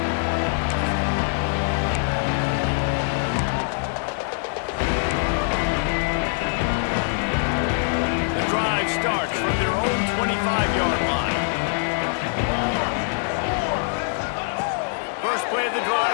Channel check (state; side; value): silent; right; 62 dB below the other